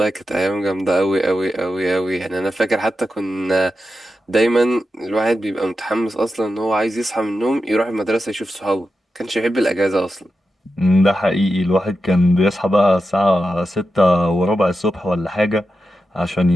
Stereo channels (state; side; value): normal; both; correlation 0.90